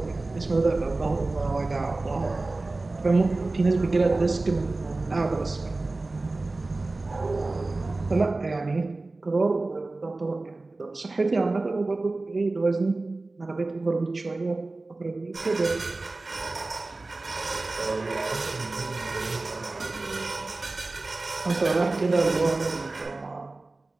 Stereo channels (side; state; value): left; quieter; 3.2 dB